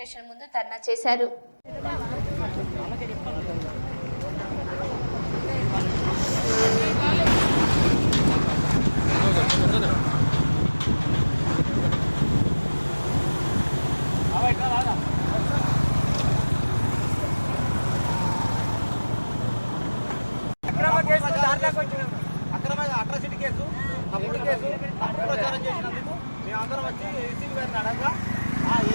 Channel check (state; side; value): inverted; both; correlation -1.00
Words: ముందు ధర్నా చేశారు. అక్రమ అట్రాసిటీ కేసు, తప్పుడు కేసు, తప్పుడు ప్రచారం చేసినందుకు మేమందరం వచ్చి ఏసీపీ గారిని అడగా ఈ